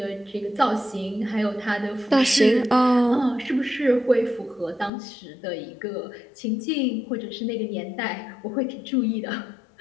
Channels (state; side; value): drops out; right; at 4.9 s